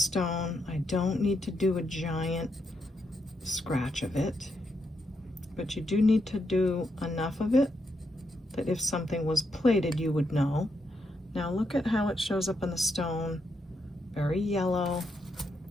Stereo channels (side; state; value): both; normal; correlation 0.81